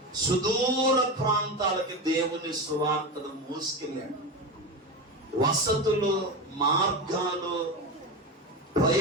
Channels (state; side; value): normal; both; correlation 0.20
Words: సుదూర ప్రాంతాలకి దేవుని సువార్తను మోసుకెళ్ళాడు. వసతులు, మార్గాలు,